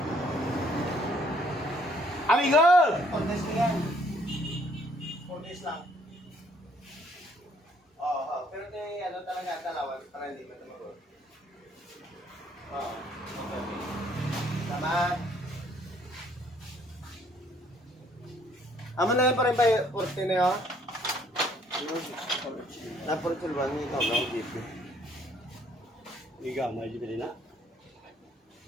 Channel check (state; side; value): normal; both; correlation 0.64